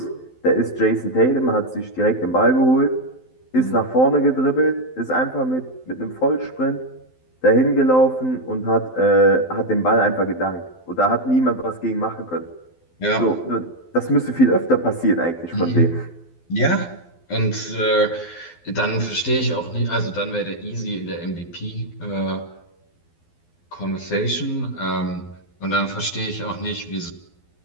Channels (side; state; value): right; late; 12 ms